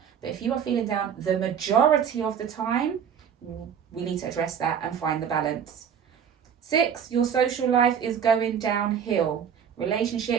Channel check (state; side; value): quieter; left; 7.9 dB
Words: but if you are feeling down the majority of the time, we need to address that and find the balance. 6, your social life is going downhill.